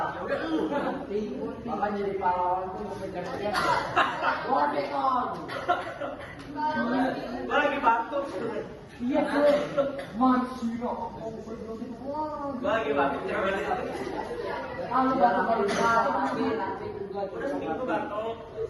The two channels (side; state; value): both; identical; correlation 1.00